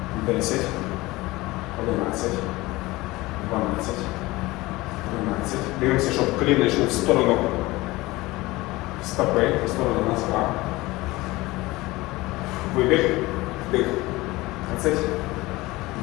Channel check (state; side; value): quieter; right; 20.3 dB